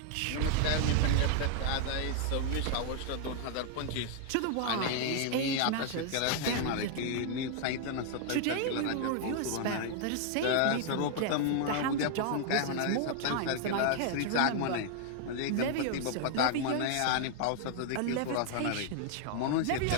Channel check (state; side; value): different; both; correlation 0.00